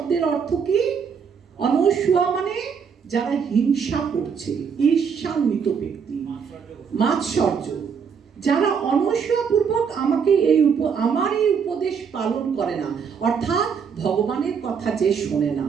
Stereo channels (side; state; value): left; quieter; 6.5 dB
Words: অর্থ কি? অনস্বয়া মানে যারা হিংসা করছে, ঈর্ষান্বিত ব্যক্তি, মাৎসর্য, যারা অনস্বপূর্বক আমার এই উপদেশ পালন করে না, অর্থাৎ ভগবানের কথা যে শোনে না,